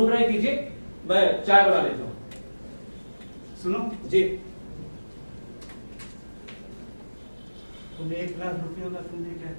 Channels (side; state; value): both; inverted; correlation -1.00